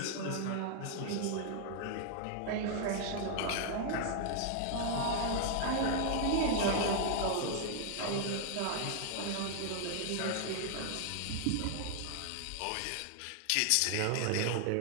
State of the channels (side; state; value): both; different; correlation 0.00